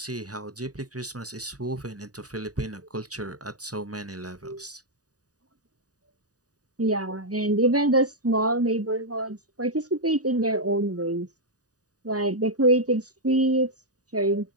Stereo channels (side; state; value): left; late; 0.67 ms